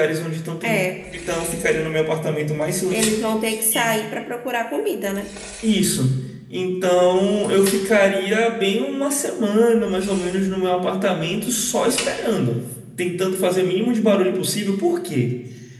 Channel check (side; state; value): both; identical; correlation 1.00